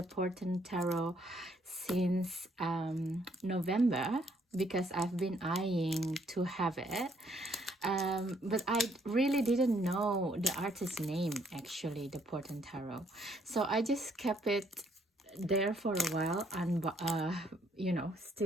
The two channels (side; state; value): both; normal; correlation 0.68